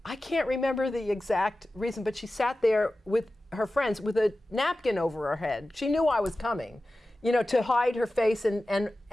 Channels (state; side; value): normal; both; correlation 0.95